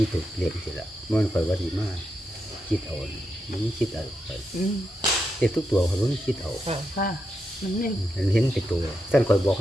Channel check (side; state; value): both; normal; correlation 0.85